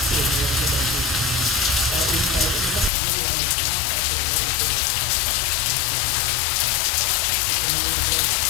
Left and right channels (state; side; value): drops out; right; at 2.9 s